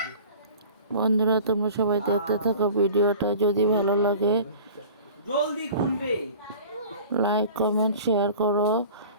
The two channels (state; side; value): inverted; both; correlation -0.42